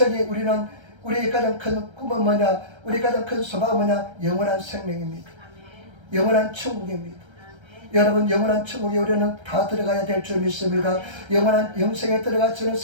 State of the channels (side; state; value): left; late; 1.3 ms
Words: 우리의 가장 큰 꿈은 뭐냐? 우리 가장 큰 소망은 뭐냐? 영원한 생명입니다. 영원한 천국입니다. 여러분 영원한 천국에 우리는 다 들어가야 될 줄 믿습니다. 영원한 영생에 들어가시는